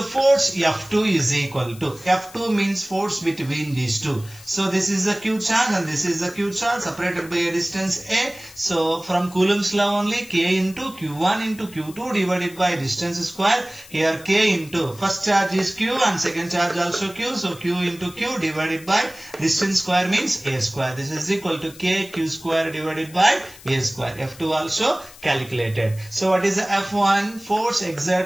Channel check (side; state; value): left; noise; hiss, 20 dB below the sound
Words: force F2 is equal to, F2 means force between these two. So this is the Q charge and this is the Q charge separated by a distance A. So from Coulomb's law only, K into Q1 into Q2 divided by distance square. Here K into, first charge is Q and second charge also Q. So Q into Q divided by distance square means A square. This is equal to KQ square divided by A square. F2 also calculated. So what is the F1? Force